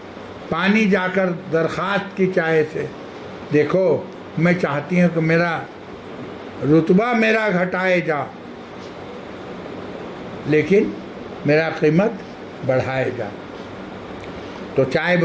پانی جا کر درخواست کی چائے سے، دیکھو میں چاہتی ہوں کہ میرا رتبہ میرا گھٹائے جا، لیکن میرا قیمت بڑھائے جا۔ تو چائے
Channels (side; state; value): both; identical; correlation 1.00